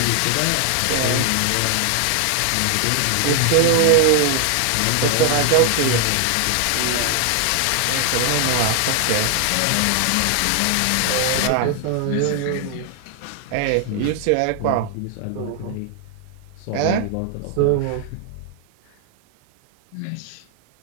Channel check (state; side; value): different; both; correlation 0.00